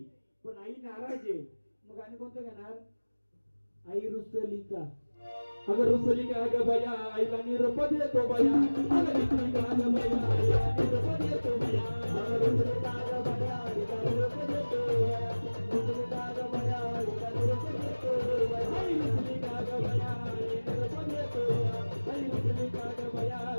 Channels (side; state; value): both; inverted; correlation -1.00